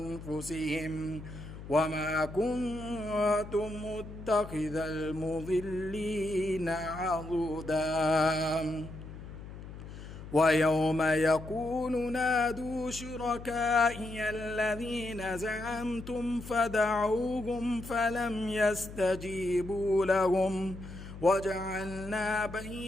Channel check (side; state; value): left; noise; hum, 13 dB below the sound